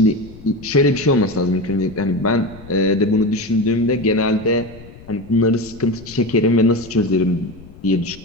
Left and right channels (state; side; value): noise; left; rumble, 19 dB below the sound